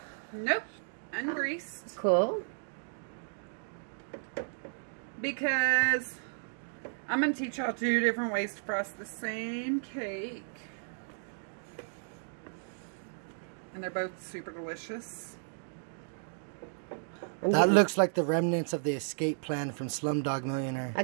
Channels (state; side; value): silent; left; digital silence